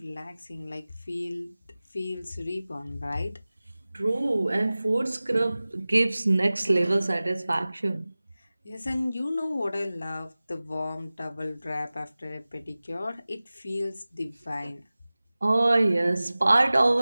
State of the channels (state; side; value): inverted; both; correlation -0.98